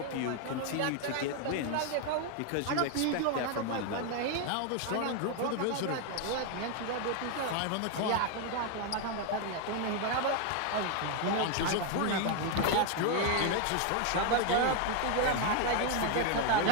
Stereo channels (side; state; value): both; different; correlation 0.01